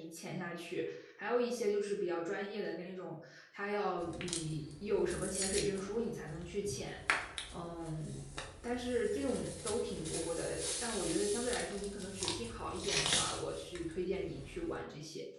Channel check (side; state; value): both; identical; correlation 1.00